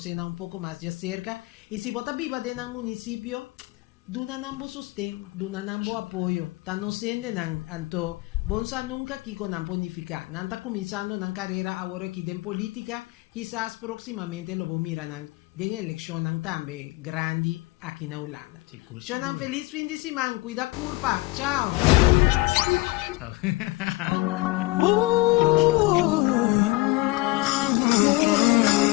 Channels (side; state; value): right; quieter; 21.5 dB